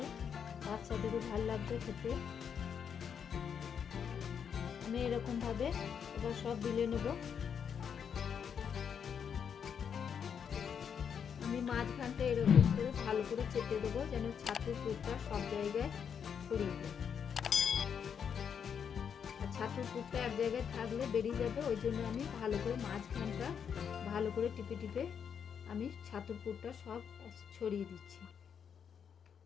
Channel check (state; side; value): quieter; right; 7.4 dB